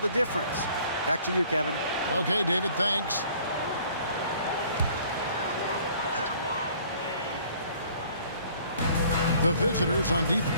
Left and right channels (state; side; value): inverted; both; correlation -0.56